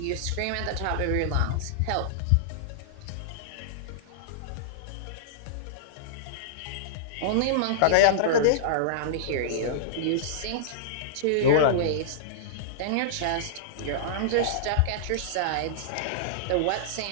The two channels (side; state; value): both; different; correlation -0.02